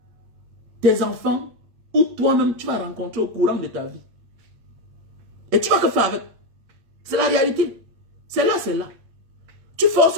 tes enfants ou toi-même, tu vas rencontrer au courant de ta vie. Et tu vas que faire avec. C'est la réalité. C'est là, c'est là. Tu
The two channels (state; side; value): late; left; 8.5 ms